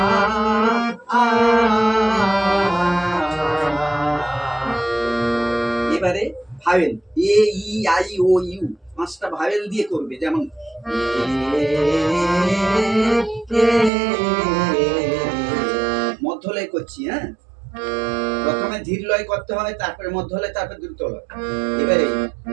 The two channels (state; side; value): drops out; left; at 13.9 s